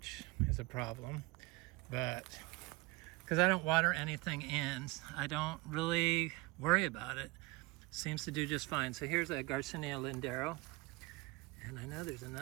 is a problem. But because I don't water anything in, I don't really worry about it. seems to do just fine. So here's a Garcinia Lindero, and I know there's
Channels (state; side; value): quieter; left; 22.9 dB